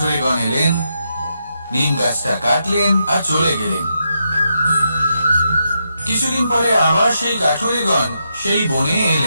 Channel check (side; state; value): both; inverted; correlation -0.83